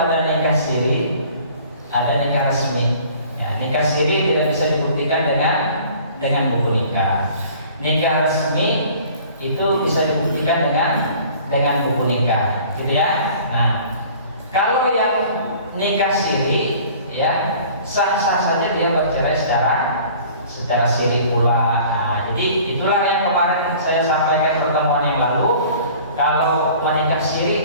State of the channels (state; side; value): inverted; both; correlation -0.49